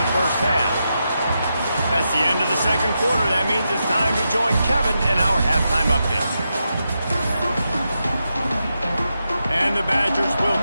first half. That's the end of the second quarter. That means it's time to join Kevin in our halftime update. And the Badgers will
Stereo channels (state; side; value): inverted; both; correlation -0.86